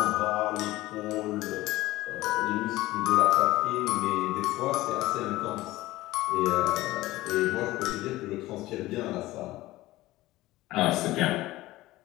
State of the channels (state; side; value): quieter; right; 17.7 dB